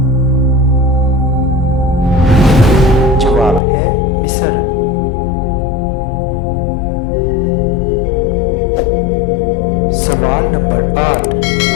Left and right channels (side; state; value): right; drops out; at 3.6 s